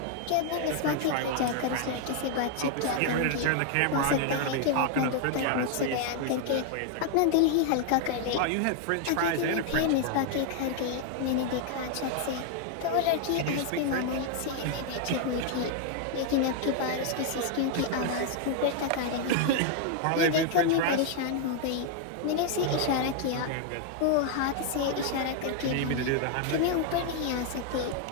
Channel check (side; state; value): both; different; correlation 0.00